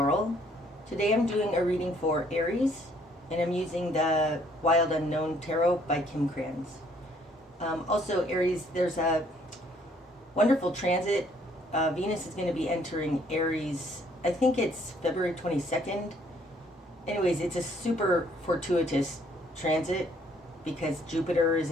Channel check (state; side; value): normal; both; correlation 0.64